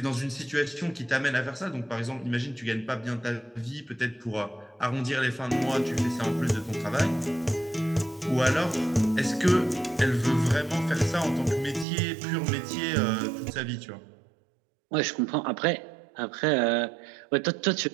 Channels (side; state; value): left; drops out; at 11.9 s